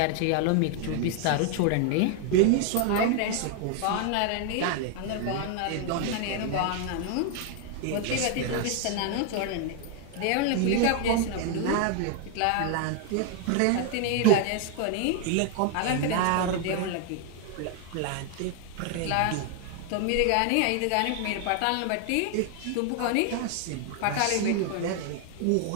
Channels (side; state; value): both; different; correlation 0.00